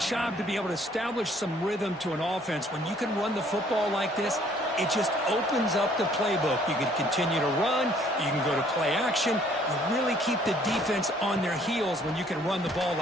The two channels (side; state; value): both; normal; correlation 0.61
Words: to be able to establish some rhythm to an offense. When you can run the football like this, it just opens up the playbook. You can continue to run. You can go to play action. You really keep the defense on their heels when you can run the ball